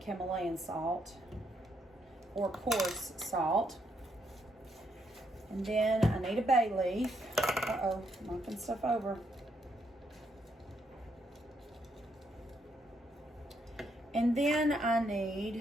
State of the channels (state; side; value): normal; both; correlation 0.76